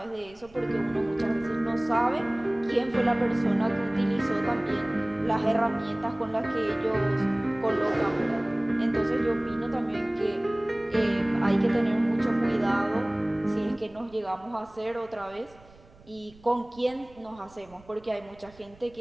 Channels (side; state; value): right; noise; rumble, 26 dB below the sound